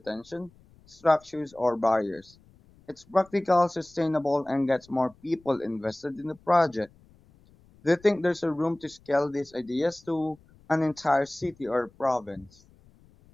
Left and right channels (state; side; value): noise; left; rumble, 28 dB below the sound